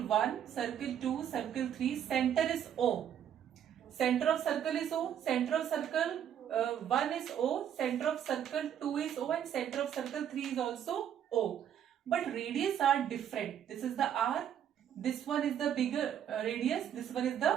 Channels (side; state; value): left; quieter; 9.6 dB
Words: 1, circle 2, circle 3, center is O. Center of circle is O, center of circle 1 is O, center of circle 2 is O, and center of circle 3 is also O. But radius are different. This is the R, this one is the bigger radius, this one is